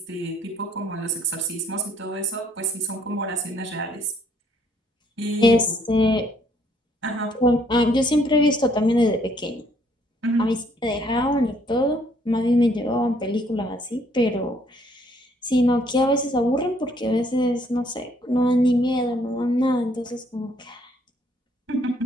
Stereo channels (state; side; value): normal; both; correlation 0.66